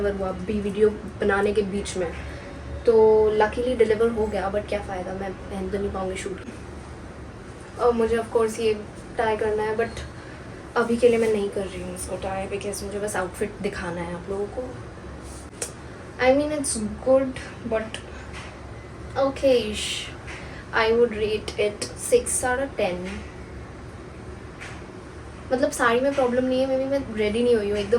हुआ, अभी वीडियो बनाने के बीच में। तो लकीली डिलीवर हो गया, बट क्या फ़ायदा, मैं पहन तो नहीं पाऊँगी शूट। और मुझे ऑफकोर्स ये ट्राई करना है, बट अभी के लिए मैं नहीं कर रही हूँ इसको ट्राई बिकॉज मुझे बस आउटफिट दिखाना है आप लोगों को। I mean it's good but okayish. I would rate it 6 out of 10. मतलब साड़ी में प्रॉब्लम नहीं है, मे बी मैं रेडी नहीं हुई हूँ,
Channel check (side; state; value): both; identical; correlation 1.00